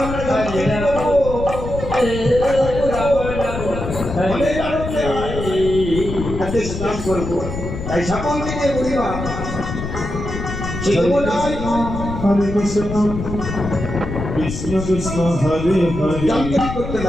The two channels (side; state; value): left; noise; rumble, 7 dB below the sound